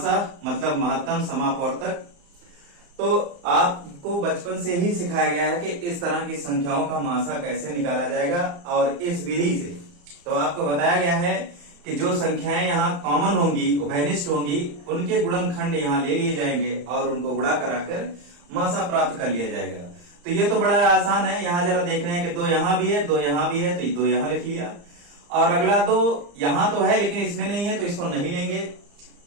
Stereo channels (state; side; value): late; left; 35 ms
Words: मतलब महत्तम समापवर्तक। तो आपको बचपन से ही सिखाया गया है कि इस तरह की संख्याओं का मासा कैसे निकाला जाएगा, और इस विधि से तो आपको बताया गया है कि जो संख्याएं यहाँ कॉमन होंगी, उभयनिष्ठ होंगी, उनके गुणनखंड यहाँ ले लिए जाएंगे और उनको गुणा कराकर मासा प्राप्त कर लिया जाएगा। तो ये तो बड़ा आसान है। यहाँ जरा देख रहे हैं कि 2 यहाँ भी है, 2 यहाँ भी है, तो 2 यहाँ लिख लिया। और अगला 2 यहाँ तो है लेकिन इसमें नहीं है तो इसको नहीं लेंगे।